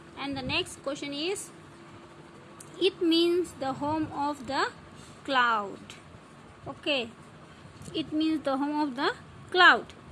And the next question is, it means the home of the cloud. Okay, it means the home of the cloud.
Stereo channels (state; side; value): identical; both; correlation 1.00